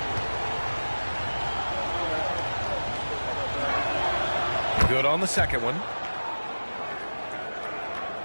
Good on the second one.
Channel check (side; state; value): both; inverted; correlation -1.00